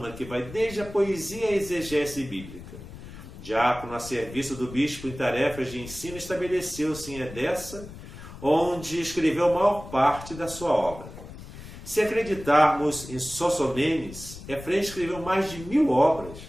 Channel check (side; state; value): left; noise; rumble, 14 dB below the sound